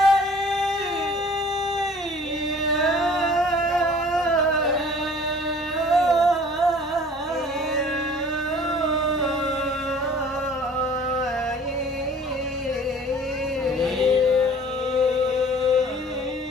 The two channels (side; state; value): both; normal; correlation 0.50